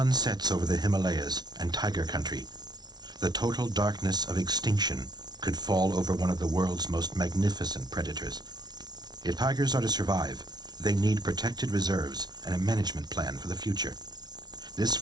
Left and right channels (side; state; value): left; late; 0.19 ms